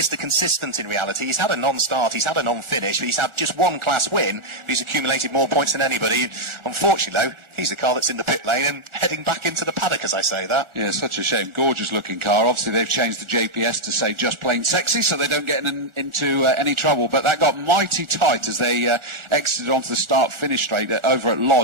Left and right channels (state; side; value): late; left; 1.4 ms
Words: Consistent in reality. He's had a non-start, he's had a non-finish, but he's had just 1 class win. He's accumulated more points than anybody. Unfortunately, though, he's the car that's in the pit lane and heading back into the paddock as I say that. Yeah, such a shame. Gorgeous looking car. Obviously, they've changed the JPS to say just plain sexy, so they don't get into any trouble. But that got mighty tight as they exited onto the start-finish straight over at